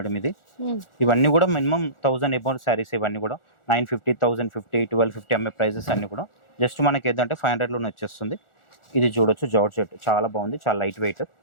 మేడం ఇది. ఇవన్నీ కూడా మినిమం 1000 అబౌవ్ శారీస్. ఇవన్నీ కూడా 950, 1050, 1250 అమ్మే ప్రైజెస్ అన్ని కూడా. జస్ట్ మనకి ఏదంటే 500లోనే వచ్చేస్తుంది. ఇది చూడొచ్చు, జార్జెట్, చాలా బాగుంది, చాలా లైట్ వెయిట్.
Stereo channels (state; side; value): late; right; 1.4 ms